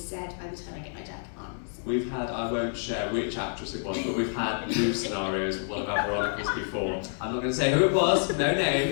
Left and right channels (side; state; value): right; silent; 59 dB below the other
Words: said by the time I get my jacket on. So. We've had, I won't share which actress it was, but we've had new scenarios with one of our Veronicas before. I'm not going to say who it was, no